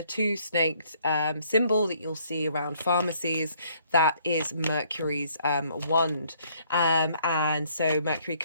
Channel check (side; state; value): both; inverted; correlation -0.64